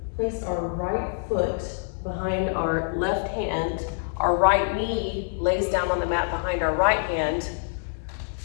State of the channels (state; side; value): silent; right; digital silence